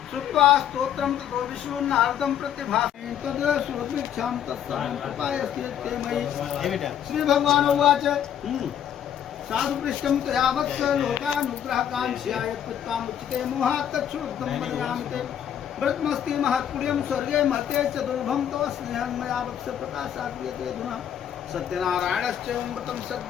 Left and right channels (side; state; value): right; quieter; 9.7 dB